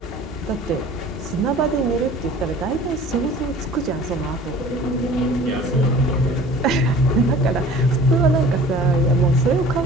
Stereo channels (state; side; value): normal; both; correlation 0.46